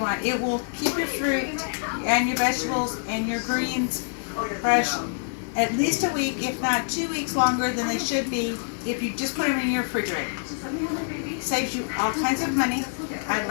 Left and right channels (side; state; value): right; silent; digital silence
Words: want. It will keep your fruit and your vegetables and your greens fresh at least a week, if not 2 weeks longer than they should be if you just put them in your refrigerator. Saves you all kinds of money. I'd